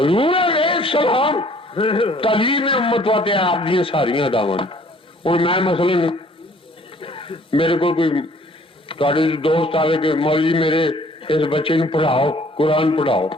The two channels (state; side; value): normal; both; correlation 0.57